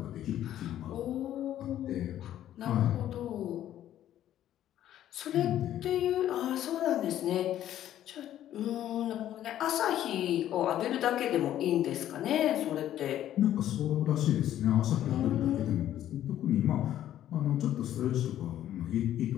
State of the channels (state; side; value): quieter; right; 12.0 dB